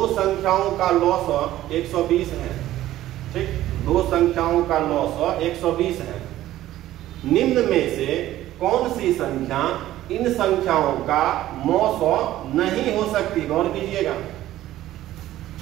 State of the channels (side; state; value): left; quieter; 14.2 dB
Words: संख्याओं का लॉस 120 है, ठीक, दो संख्याओं का लॉस 120 है। निम्न में से कौन सी संख्या इन संख्याओं का मौसौ नहीं हो सकती, गौर कीजिएगा।